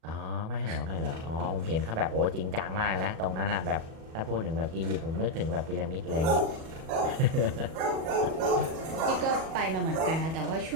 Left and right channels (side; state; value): left; late; 37 ms